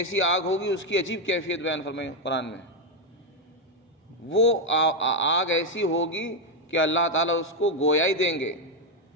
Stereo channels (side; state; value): both; normal; correlation 0.04